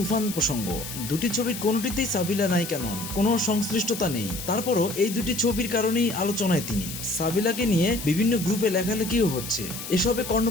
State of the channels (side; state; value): left; noise; hiss, 9 dB below the sound